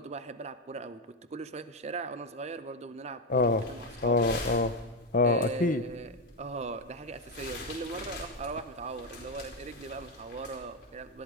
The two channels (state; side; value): normal; both; correlation 0.08